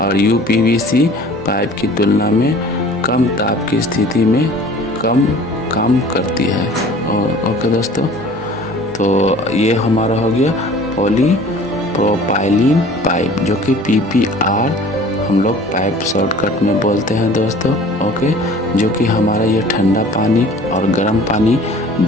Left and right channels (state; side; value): normal; both; correlation 0.47